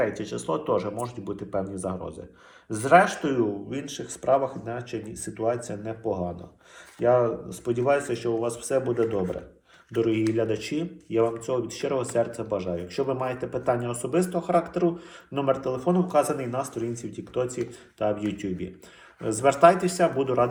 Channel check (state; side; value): identical; both; correlation 1.00